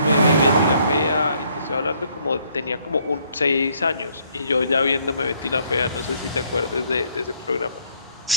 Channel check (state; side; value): inverted; both; correlation -0.66